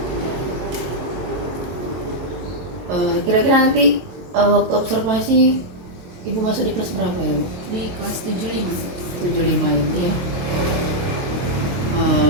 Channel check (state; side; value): late; left; 23 ms